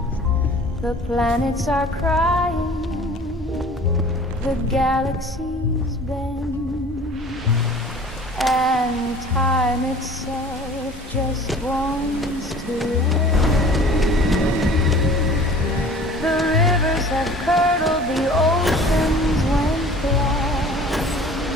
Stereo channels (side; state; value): both; normal; correlation 0.46